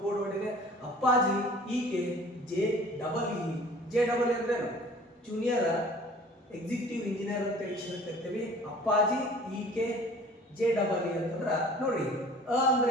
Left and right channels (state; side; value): normal; both; correlation 0.48